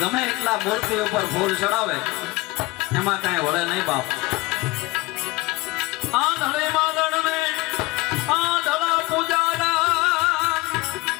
એટલા મૂર્તિ ઉપર ફૂલ ચડાવે એમાં કાંઈ વળે નહીં બાપ આંધળે માદળને આંધળા પૂજાના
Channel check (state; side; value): quieter; right; 21.8 dB